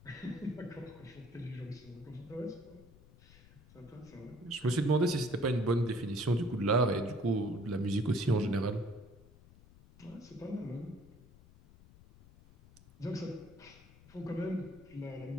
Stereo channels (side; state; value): left; noise; rumble, 23 dB below the sound